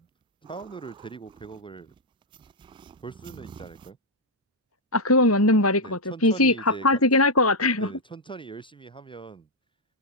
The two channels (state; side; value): normal; both; correlation -0.01